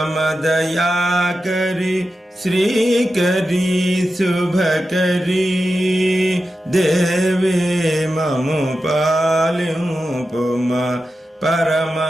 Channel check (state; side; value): normal; both; correlation 0.91